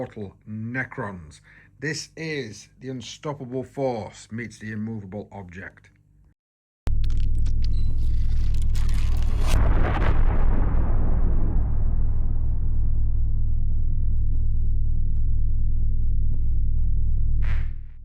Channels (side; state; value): both; identical; correlation 1.00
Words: Necrons. This is the unstoppable force meets the immovable object.